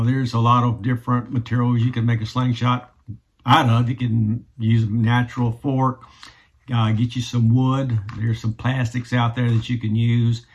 there's a lot of different materials you can make a slingshot out of. You can use a natural fork, get you some wood. There's some plastics out there that you can use.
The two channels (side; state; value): both; identical; correlation 1.00